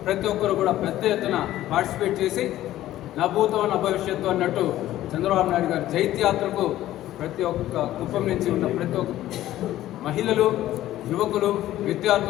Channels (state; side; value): quieter; right; 14.1 dB